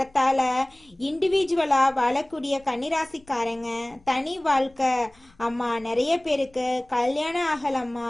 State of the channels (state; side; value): noise; left; rumble, 30 dB below the sound